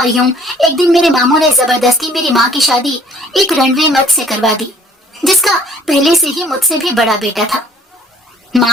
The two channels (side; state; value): both; normal; correlation 0.57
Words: یوں ایک دن میرے ماموں نے زبردستی میری ماں کی شادی ایک رنوے مرد سے کروا دی، جس کا پہلے سے ہی مجھ سے بھی بڑا بیٹا تھا۔